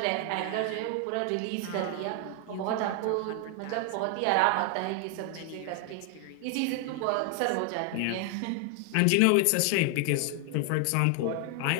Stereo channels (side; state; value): both; different; correlation 0.00